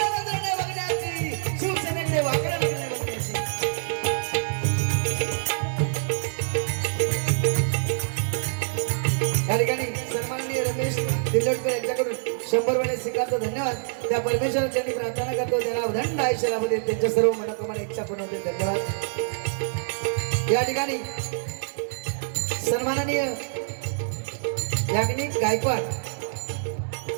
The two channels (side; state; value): left; silent; 61 dB below the other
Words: नजरेने बघण्याची, शिवसेनेकडे वाकड्या नजरेने बघण्याची. या ठिकाणी सन्माननीय रमेश दिल्लोटकर यांच्याकडून 100 रुपये स्वीकारतो धन्यवाद. त्या परमेश्वराची मी प्रार्थना करतो त्यांना उदंड आयुष्य लाभू देत, त्यांच्या सर्व मनोकामना इच्छा पूर्ण होते. धन्यवाद. या ठिकाणी सन्माननीय याज्ञिक गायकवाड